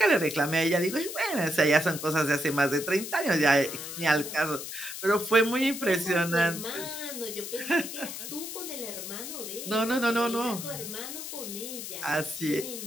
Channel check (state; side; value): noise; left; hiss, 8 dB below the sound